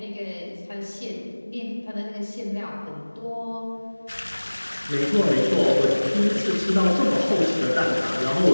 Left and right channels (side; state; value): both; inverted; correlation -1.00